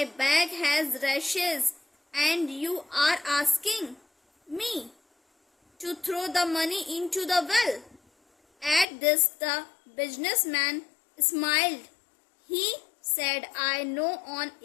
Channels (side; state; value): right; drops out; at 8.8 s